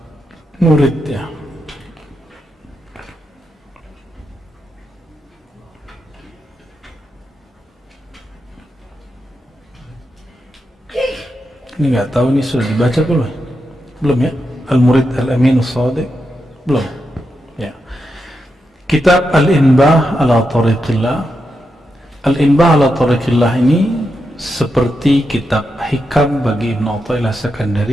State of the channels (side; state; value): both; normal; correlation 0.86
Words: murid ya. Ini nggak tahu ini sudah dibaca belum? Belum ya? Al-Murid Al-Amin As-Sadiq belum ya. Kitab Al-Inbah ala Tariqillah. Al-Inbah ala Tariqillah ini seperti kitab hikam bagi Ibn Athaillah